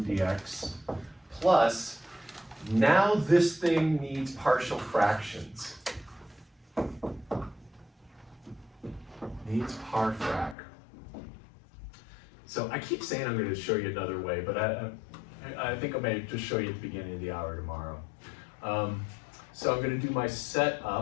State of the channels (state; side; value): drops out; right; at 10.6 s